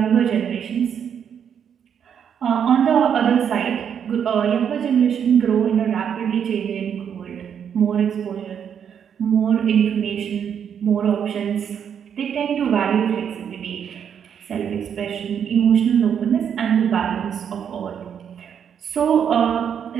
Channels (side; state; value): left; quieter; 8.1 dB